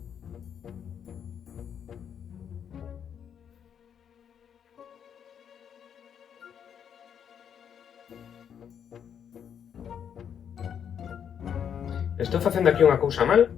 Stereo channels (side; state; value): right; quieter; 8.3 dB